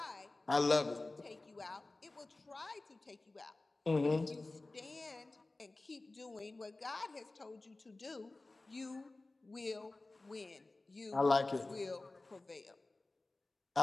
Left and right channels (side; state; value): right; quieter; 3.1 dB